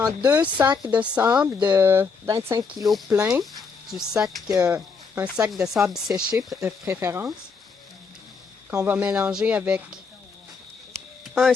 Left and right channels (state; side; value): quieter; right; 5.1 dB